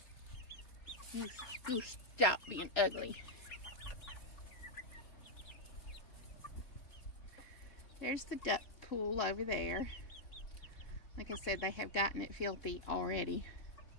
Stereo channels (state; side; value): late; right; 3.3 ms